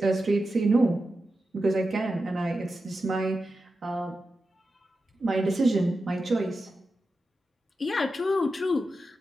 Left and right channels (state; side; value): normal; both; correlation 0.91